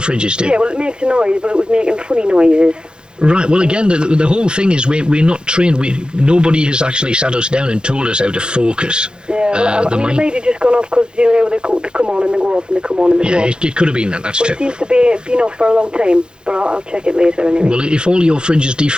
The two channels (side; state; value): left; late; 0.049 ms